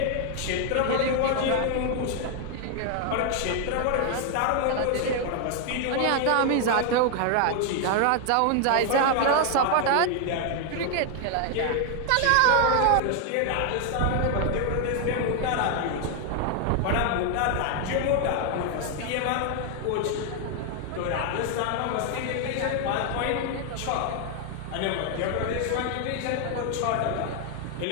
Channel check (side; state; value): both; different; correlation 0.00